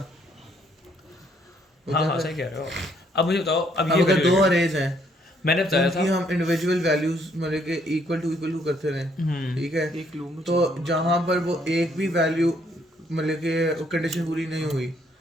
हाँ सही कह रहे हो। अब मुझे बताओ, अब अब ये अगर 2 अरेज हैं, मैंने बताया था कि हम इंडिविजुअल वैल्यूज मतलब के इक्वल टू करते रहे, ठीक है, एक लूप में तो जहाँ पर वो एक भी वैल्यू मतलब के कंडीशन पूरी नहीं हुई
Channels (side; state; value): both; normal; correlation 0.68